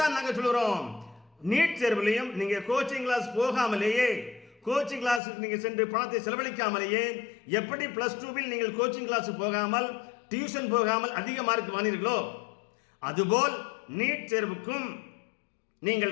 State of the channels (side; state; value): right; drops out; at 5.2 s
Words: நாங்கள் சொல்கிறோம். நீட் தேர்விலையும் நீங்க கோச்சிங் கிளாஸ் போகாமலேயே, கோச்சிங் கிளாஸ் நீங்க சென்று பணத்தை செலவழிக்காமலேயே எப்படி +2வில் நீங்கள் கோச்சிங் கிளாஸ் போகாமல், டியூஷன் போகாமல் அதிக மார்க் வாங்கினீர்களோ, அதுபோல் நீட் தேர்வுக்கும்